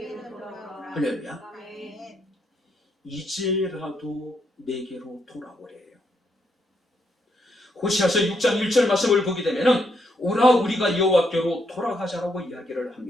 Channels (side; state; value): both; normal; correlation 0.77